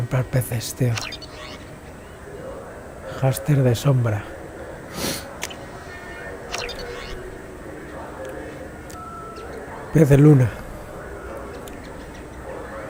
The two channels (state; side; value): identical; both; correlation 1.00